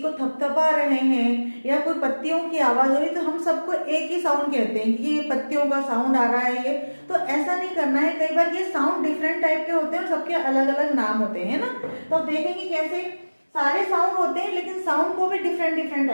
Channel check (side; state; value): both; inverted; correlation -1.00